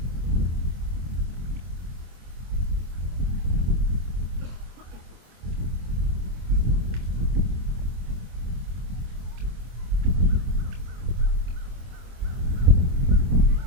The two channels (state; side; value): late; left; 25 ms